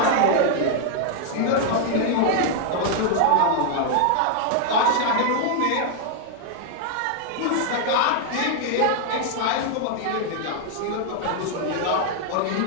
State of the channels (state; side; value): different; both; correlation 0.00